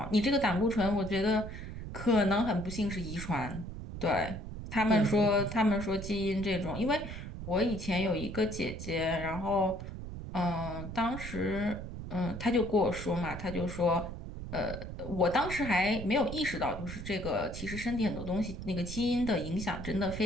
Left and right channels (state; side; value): noise; right; rumble, 9 dB below the sound